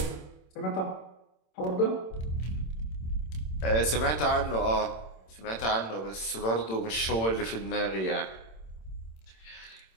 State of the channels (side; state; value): right; late; 27 ms